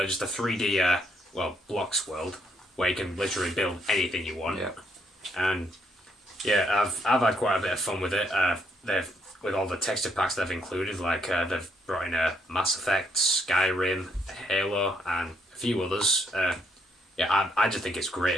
just a 3D blocks world where you can literally build anything you want. Yeah. And yeah, I've had quite a bit of fun with it. With all the texture packs they've included, like they've brought in Mass Effect, Skyrim, Halo, and a few others. I just think it's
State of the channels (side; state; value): both; normal; correlation 0.73